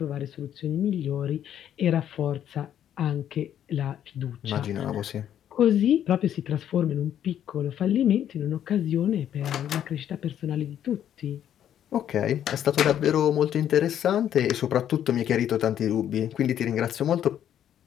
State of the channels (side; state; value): right; quieter; 10.3 dB